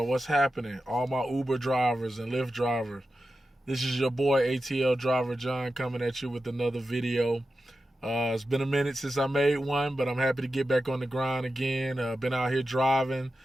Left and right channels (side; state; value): both; normal; correlation 0.91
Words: what's happening? All my Uber drivers and Lyft drivers. This is your boy, ATL Driver John, coming at you with another video. It's been a minute since I made one, but I'm happy to get back on the grind again. Been out here driving.